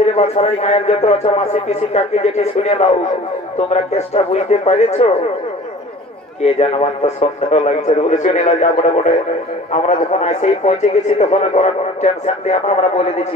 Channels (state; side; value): normal; both; correlation 0.45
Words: বাছারাই গায়ের যত আছো মাসি পিসি কাকি যেটি শুনে দাও তোমরা কেসটা বুঝতে পারেছো কে জানবার তো সন্দেহ লাগছে বলে শুনে না যা বড় বড় আমরা যখন আসেই পৌঁছে গেছি তখন কোনো টেনশন দিয়ে আমরা বলে